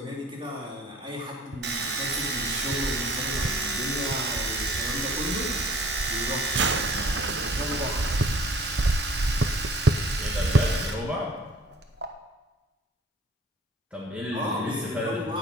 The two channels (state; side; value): normal; both; correlation 0.52